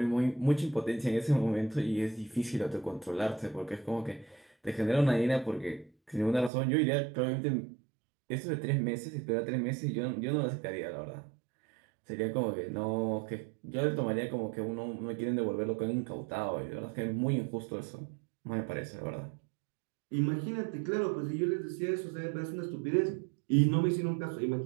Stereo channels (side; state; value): left; drops out; at 6.5 s